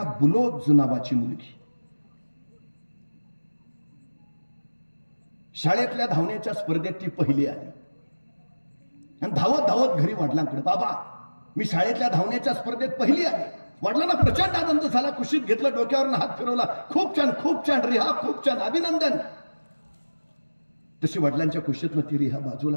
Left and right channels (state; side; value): inverted; both; correlation -1.00